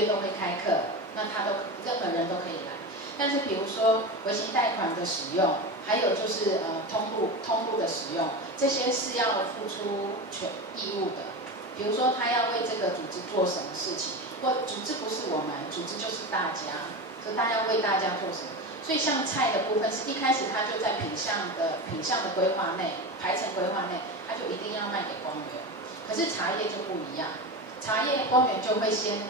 都会开课，那任何人都可以来。但是比如说微型贷款的使用，还有就是通路的使用，这些是要付出义务的。比如说他要为这个组织做什么事情。或组织不是我们，组织就是大家，所以大家为大家做什么？所以像菜的部分是一开始他就在品项的规划内、排程规划内，他就一定要卖给光源。可是茶叶就不一样，茶叶光源就会先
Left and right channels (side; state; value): both; normal; correlation 0.24